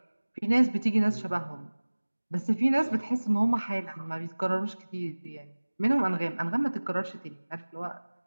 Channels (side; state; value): both; inverted; correlation -1.00